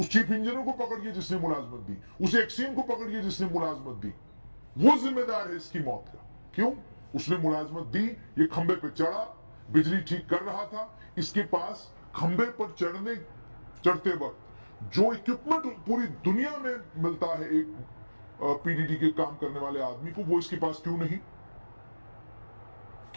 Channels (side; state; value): both; inverted; correlation -1.00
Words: चीफ इंजीनियर को पकड़िए जिसने मुलाजमत दी, उस एक्सीएम को पकड़िए जिसने मुलाजमत दी। वो जिम्मेदार है इसकी मौत का। क्यों? उसने मुलाजमत दी, ये खंबे पे चढ़ा, बिजली ठीक कर रहा था, इसके पास खंबे पर चढ़ते वक्त जो इक्विपमेंट पूरी दुनिया में मिलता है एक पीडीडी के काम करने वाले आदमी को, वो इसके पास क्यों नहीं?